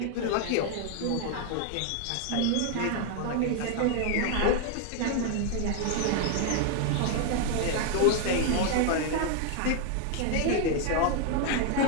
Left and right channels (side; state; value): both; different; correlation 0.00